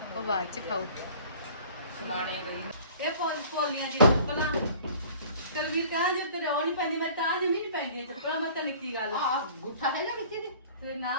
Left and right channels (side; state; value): both; inverted; correlation -0.48